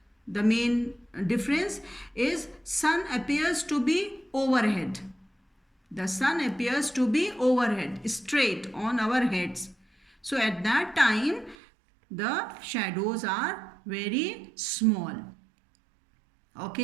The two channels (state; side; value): drops out; left; at 11.6 s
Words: the main difference is sun appears to be overhead. The sun appears to be overhead, straight on our heads. So at that time, the shadows are very small.